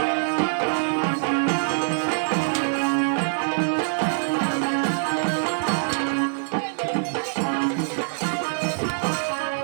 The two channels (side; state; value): left; silent; digital silence